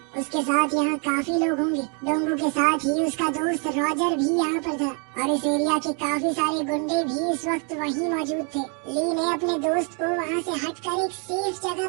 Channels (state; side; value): quieter; left; 37.6 dB